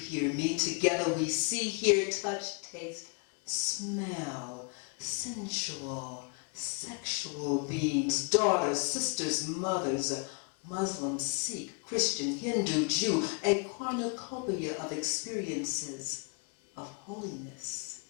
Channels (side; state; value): right; quieter; 35.7 dB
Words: me. Together we see, hear, touch, taste, smell, sensual, sexual beings, daughters, sisters, mothers, Muslim, Sikh, Christian, Hindu, Jew, a cornucopia of experiences of holiness,